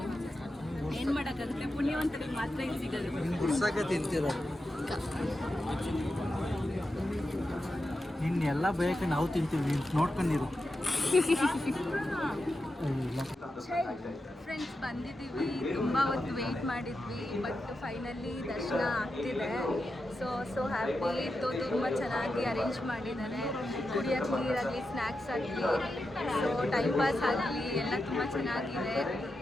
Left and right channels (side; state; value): both; normal; correlation 0.89